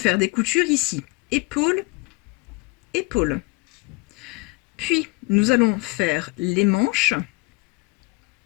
des coutures ici, épaule, épaule. Puis nous allons faire les manches,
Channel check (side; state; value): right; quieter; 25.5 dB